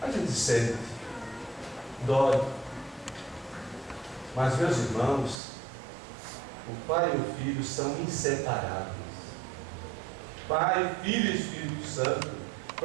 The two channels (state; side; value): drops out; left; at 5.4 s